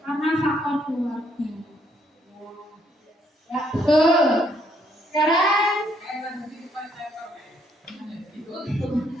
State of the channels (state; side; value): normal; both; correlation 0.70